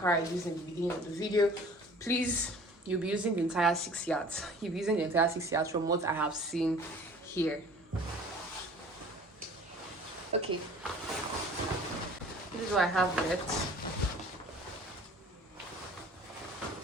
I used in the beginning of the video. Please, you'll be using the entire 6 yards. You'll be using the entire 6 yards from what I have seen here. Okay, this is what I have left.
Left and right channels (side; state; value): both; normal; correlation 0.48